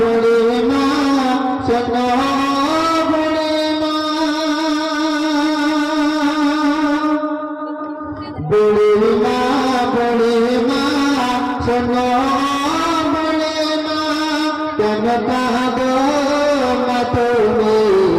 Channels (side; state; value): both; identical; correlation 1.00